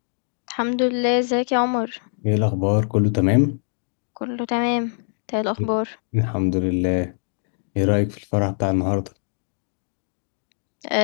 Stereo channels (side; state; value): right; silent; digital silence